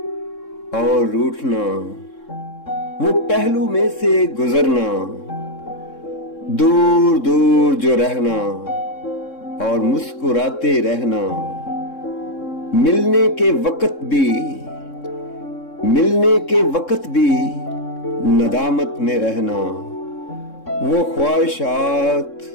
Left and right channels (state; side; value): late; right; 3.7 ms